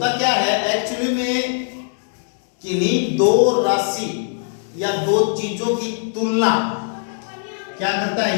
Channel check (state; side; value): silent; right; 65 dB below the other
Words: क्या है एक्चुअली में? किन्हीं दो राशि या दो चीजों की तुलना क्या करता